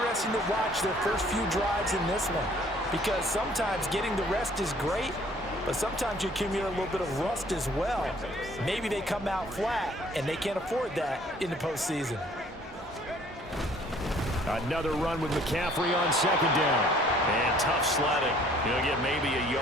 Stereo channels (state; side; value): normal; both; correlation 0.57